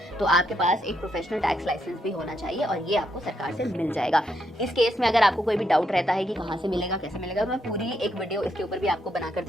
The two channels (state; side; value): normal; both; correlation 0.78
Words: तो आपके पास एक प्रोफेशनल टैक्स लाइसेंस भी होना चाहिए और ये आपको सरकार से मिल जाएगा। इस केस में अगर आपको कोई भी डाउट रहता है कि कहाँ से मिलेगा, कैसे मिलेगा, तो मैं पूरी एक वीडियो इसके ऊपर भी आपको बनाकर